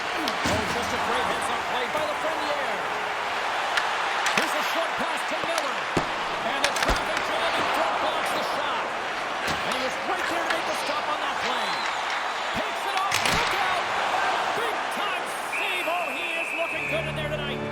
just a great heads-up play by the Lafreniere. Here's a short pass to Miller. And the traffic jam in front blocks the shot. And he was right there to make the stop on that play. Takes it off. Look out. Big-time save. Oh, he is looking good in there tonight.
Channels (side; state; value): both; identical; correlation 1.00